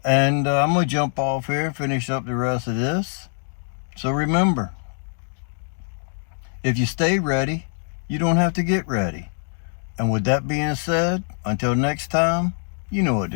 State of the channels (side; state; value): right; silent; digital silence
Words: And I'm going to jump off here and finish up the rest of this. So remember, if you stay ready, you don't have to get ready. And with that being said, until next time, you know what